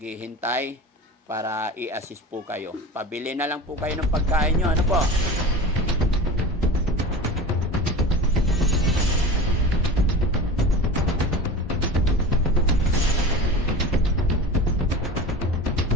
para i-assist po kayo. Pabili na lang po kayo ng pagkain nyo. Ano po?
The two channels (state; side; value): normal; both; correlation 0.33